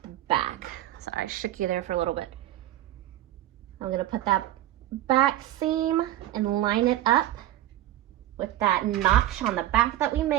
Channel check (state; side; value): quieter; left; 13.8 dB